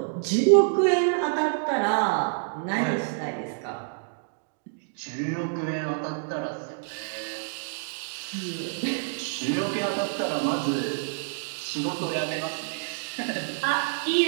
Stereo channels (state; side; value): silent; left; digital silence